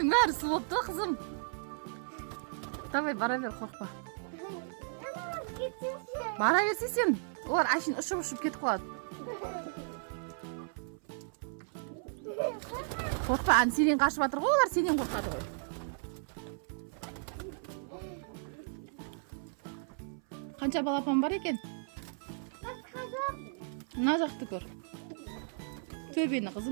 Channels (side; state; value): left; silent; 55 dB below the other